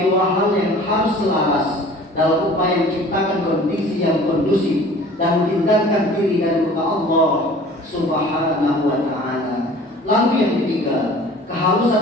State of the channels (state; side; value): normal; both; correlation 0.47